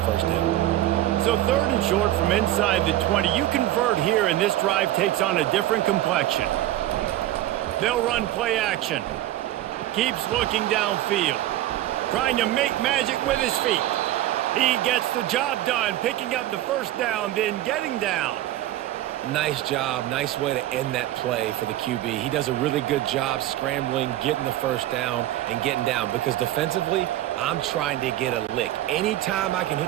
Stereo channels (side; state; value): left; quieter; 14.3 dB